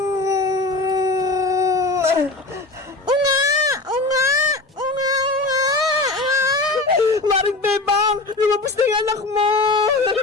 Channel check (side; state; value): right; quieter; 3.1 dB